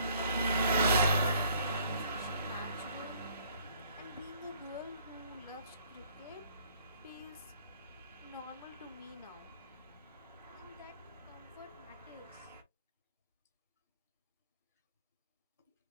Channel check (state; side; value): inverted; both; correlation -0.59